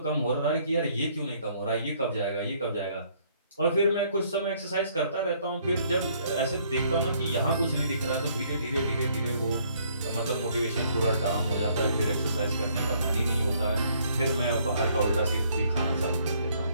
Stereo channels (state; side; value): inverted; both; correlation -0.65